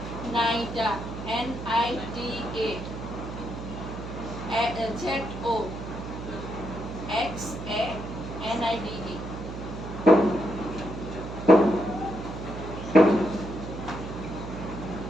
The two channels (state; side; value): noise; right; hum, 8 dB below the sound